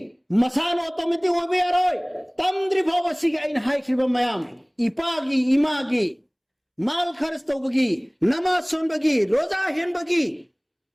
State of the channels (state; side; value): identical; both; correlation 1.00